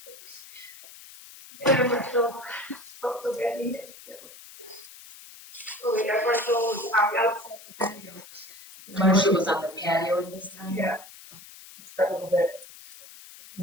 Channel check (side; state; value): left; noise; hiss, 18 dB below the sound